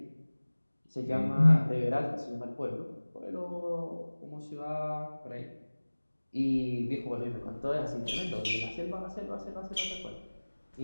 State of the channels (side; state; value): both; inverted; correlation -1.00